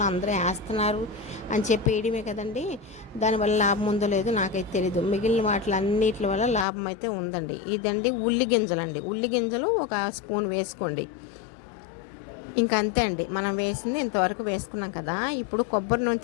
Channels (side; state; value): right; drops out; at 6.7 s